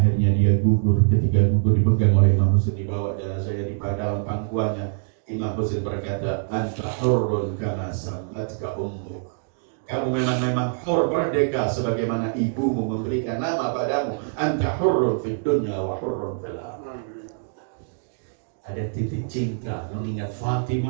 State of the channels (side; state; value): left; silent; digital silence